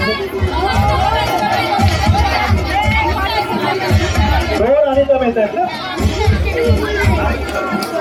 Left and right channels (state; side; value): identical; both; correlation 1.00